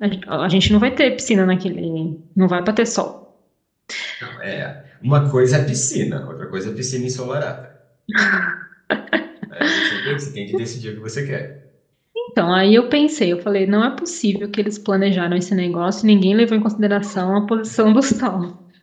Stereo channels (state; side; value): identical; both; correlation 1.00